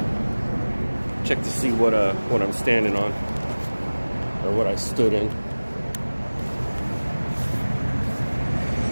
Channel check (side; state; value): both; inverted; correlation -1.00